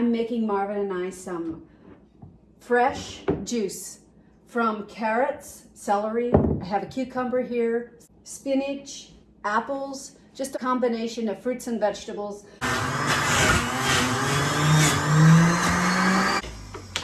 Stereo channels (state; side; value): identical; both; correlation 1.00